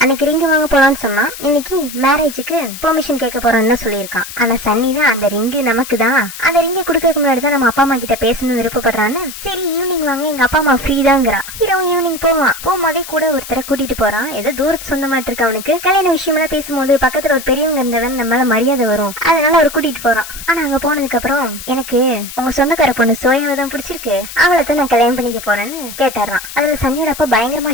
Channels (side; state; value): left; noise; hiss, 12 dB below the sound